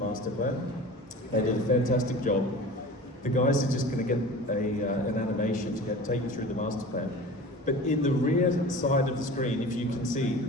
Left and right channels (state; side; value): normal; both; correlation 0.37